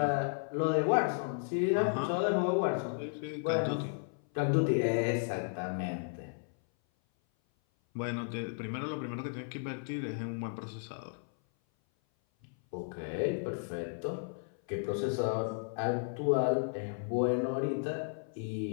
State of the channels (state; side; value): silent; right; 55 dB below the other